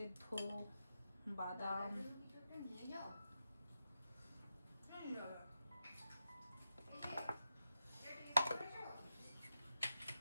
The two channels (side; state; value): both; inverted; correlation -0.88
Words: বাদাম, নিয়ে যাও।